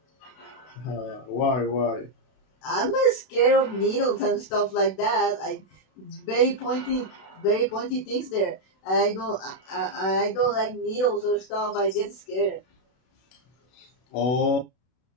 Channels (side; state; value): right; late; 32 ms